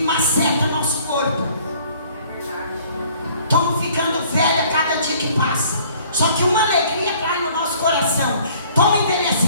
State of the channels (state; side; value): inverted; both; correlation -0.56